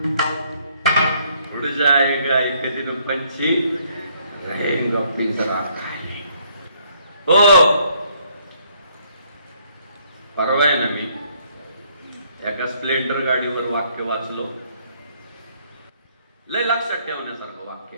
उड़ जाएगा एक दिन पंछी रहेगा पिंजरा खाली. हो, परवा आहे ना मी एका स्प्लेंडर गाडीवर वाक्य वाचलो, लय लक्षात ठेवण्यासारखं वाक्य.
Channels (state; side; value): inverted; both; correlation -0.67